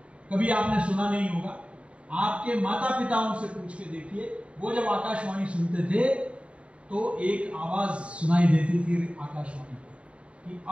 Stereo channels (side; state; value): left; late; 0.061 ms